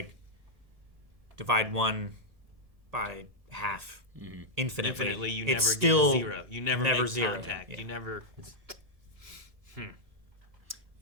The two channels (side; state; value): left; late; 1.7 ms